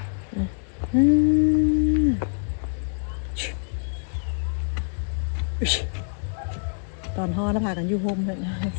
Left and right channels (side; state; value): right; silent; digital silence